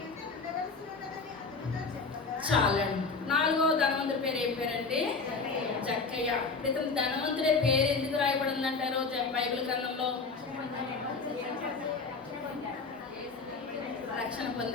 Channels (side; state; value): right; quieter; 4.4 dB